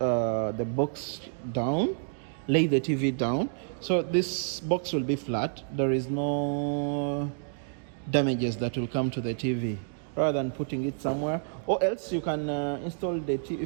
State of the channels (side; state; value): left; silent; digital silence